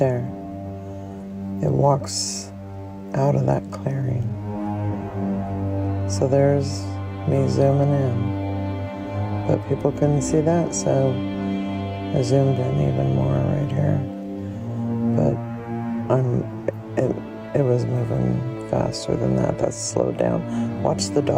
it walks out of that clearing. So there's me zooming in, but people couldn't see that, so I zoomed in even more right here. But it was moving faster than that. That's slowed down. Watch the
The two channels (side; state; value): both; identical; correlation 1.00